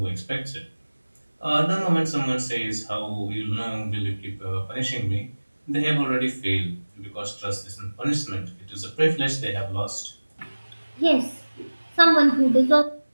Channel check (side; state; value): both; inverted; correlation -1.00